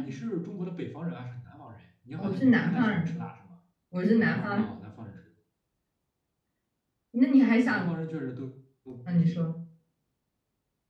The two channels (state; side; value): identical; both; correlation 1.00